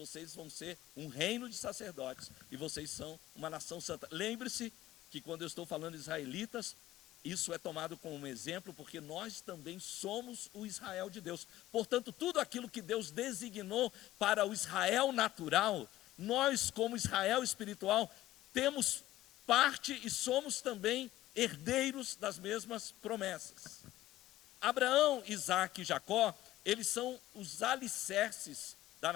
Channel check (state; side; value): quieter; right; 15.2 dB